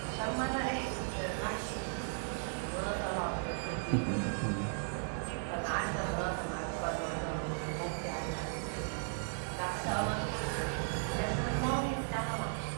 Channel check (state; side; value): silent; left; digital silence